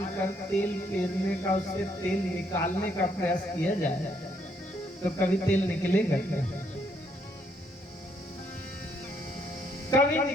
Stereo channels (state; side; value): normal; both; correlation 0.71